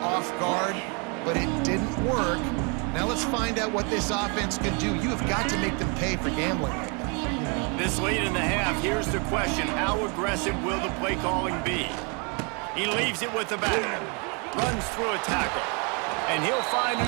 off guard, but it didn't work. Now let's find out what this offense can do. You have got to make them pay for gambling. This late in the half, here's the question. How aggressive will the play calling be? He leaves it with the back, runs through a tackle, and he'll find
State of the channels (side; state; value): left; quieter; 34.2 dB